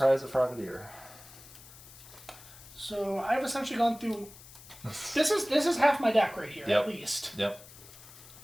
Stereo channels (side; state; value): left; noise; hiss, 19 dB below the sound